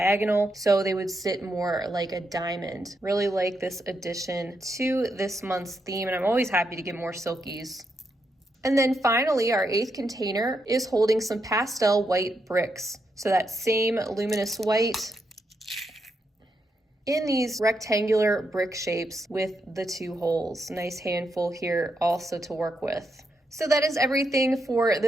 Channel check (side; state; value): both; normal; correlation 0.82